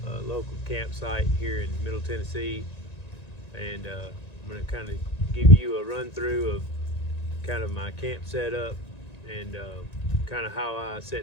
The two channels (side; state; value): right; late; 1.9 ms